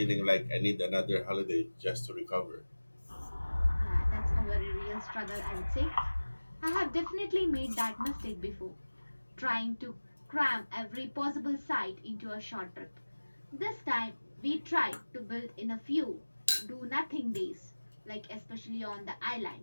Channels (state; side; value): inverted; both; correlation -1.00